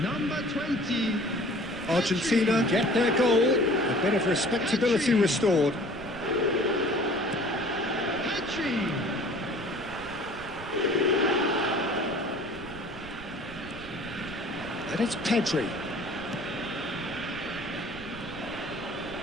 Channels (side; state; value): right; noise; rumble, 16 dB below the sound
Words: Number 20. Argentina get their goal. A bit of respectability restored. And it's Pedri.